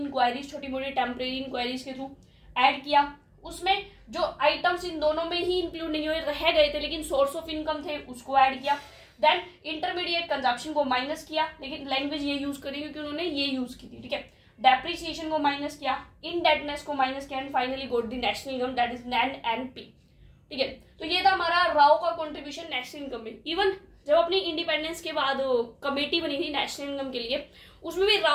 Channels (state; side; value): identical; both; correlation 1.00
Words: छोटी मोटी टेम्परेरी इंक्वायरीज के थ्रू ऐड किया। उसमें जो आइटम्स इन दोनों में ही इंक्लूड नहीं हुए, रह गए थे लेकिन सोर्स ऑफ इनकम थे, उसको ऐड किया। देन इंटरमीडिएट कंजप्शन को माइनस किया, लेकिन लैंग्वेज ये यूज करी क्योंकि उन्होंने ये यूज की थी, ठीक है। डेप्रिसिएशन को माइनस किया, इनडेटनेस को माइनस किया, and finally goat the national income, that is NNP, ठीक है। तो ये था हमारा राव का कंट्रीब्यूशन नेशनल इनकम में। इवन जब अपनी इंडिपेंडेंस के बाद कमेटी बनी थी नेशनल इनकम के लिए, उसमें भी